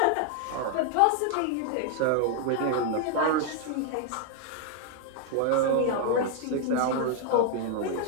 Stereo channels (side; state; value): both; different; correlation 0.00